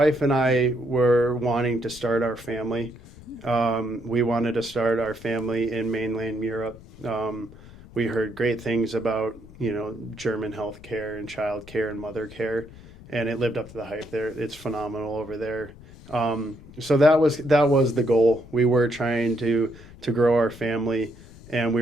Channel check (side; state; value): left; noise; rumble, 19 dB below the sound